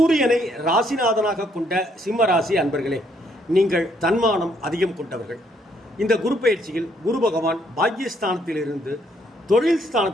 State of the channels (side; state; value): both; normal; correlation 0.70